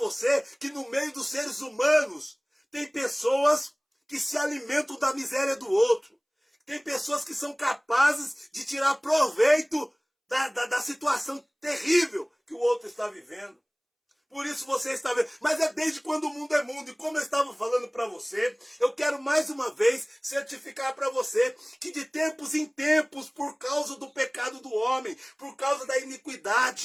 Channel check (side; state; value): both; identical; correlation 1.00